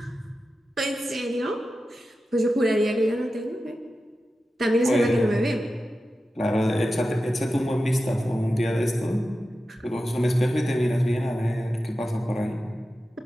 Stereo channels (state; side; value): normal; both; correlation 0.93